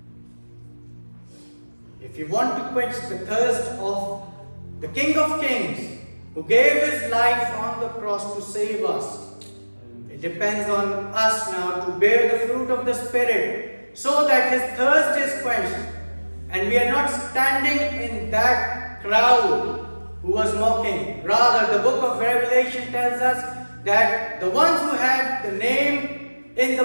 If you want to quench the thirst of the King of Kings, who gave his life on the cross to save us, it depends on us now to bear the fruit of the Spirit so that his thirst is quenched and we are not standing in that crowd who was mocking. Rather, the book of Revelation tells us that the ones who had the name in the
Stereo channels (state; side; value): inverted; both; correlation -1.00